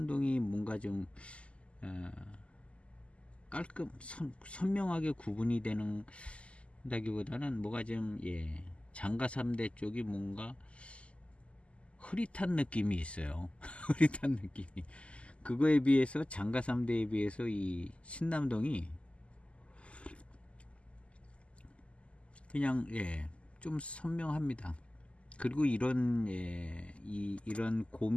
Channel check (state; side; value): late; right; 0.057 ms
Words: 뭔가 좀 깔끔 선명하게 구분이 되는 다기보다는 뭐가 좀 예, 장가 3대 쪽이 뭔가 흐릿한 느낌이 있어요. 흐릿한 느낌이. 그거에 비해서 장가 3대에 비해서 이 신남동이 그냥 예, 좀 선명합니다. 그리고 이런 예, 이런